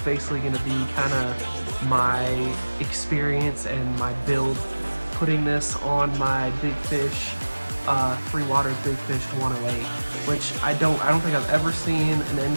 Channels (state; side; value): inverted; both; correlation -1.00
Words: basically going to be kind of my experience and my build, putting this on my BigFish 3waters BigFish 108, which I don't think I've ever seen an